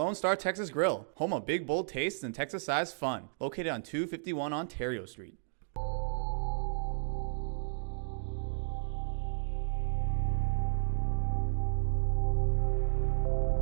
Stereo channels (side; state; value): left; silent; digital silence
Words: Star Texas Grill, home of big, bold tastes and Texas-sized fun. Located on 251 Ontario Street.